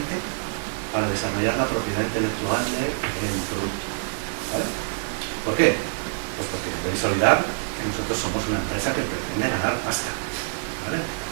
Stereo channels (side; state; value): left; silent; digital silence